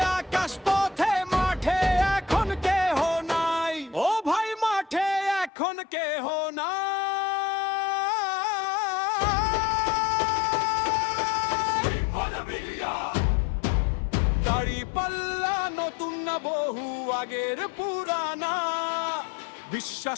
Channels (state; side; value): drops out; right; at 5.5 s